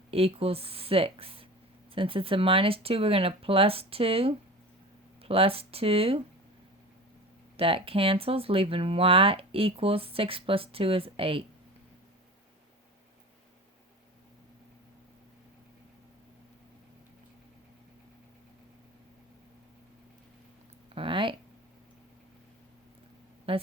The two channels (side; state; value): both; normal; correlation 0.34